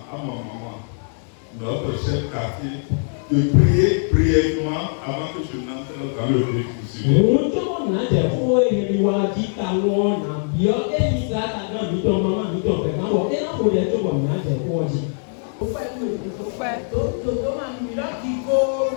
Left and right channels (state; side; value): silent; right; 62 dB below the other